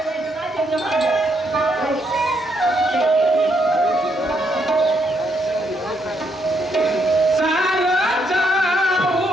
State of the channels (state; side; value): normal; both; correlation 0.76